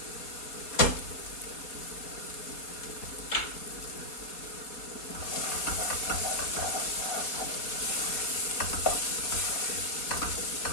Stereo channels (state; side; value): late; right; 4.2 ms